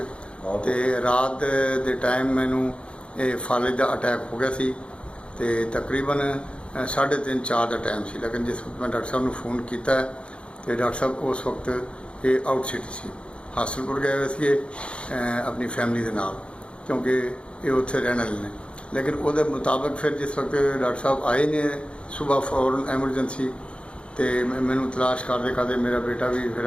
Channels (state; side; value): late; right; 0.058 ms